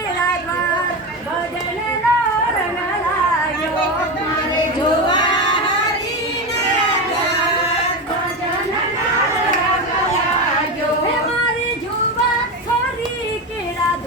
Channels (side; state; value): both; normal; correlation 0.18